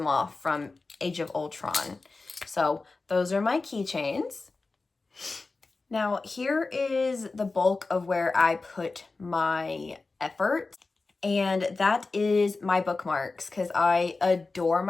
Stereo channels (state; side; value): quieter; right; 3.7 dB